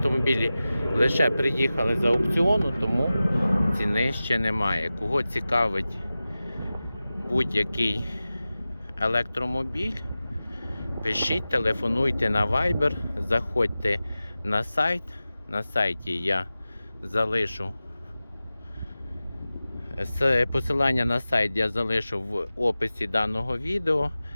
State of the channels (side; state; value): both; inverted; correlation -0.96